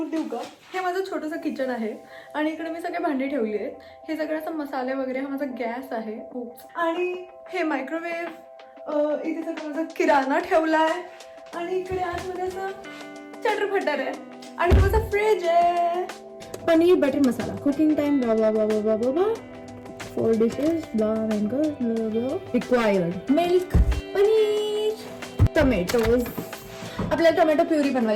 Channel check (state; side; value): identical; both; correlation 1.00